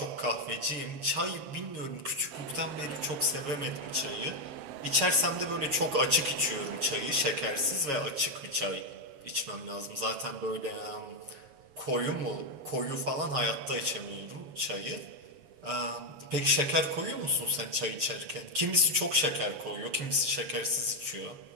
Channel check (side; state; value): left; late; 7.3 ms